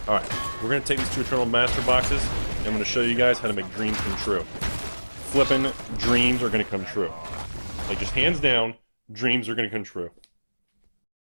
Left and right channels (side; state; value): both; inverted; correlation -1.00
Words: Alright, we're going to take these 2 Eternal Master boxes, and I'm going to show you guys how to make dreams come true. Flipping dreams are going to come true. Like, just hands down, dreams are going to come true.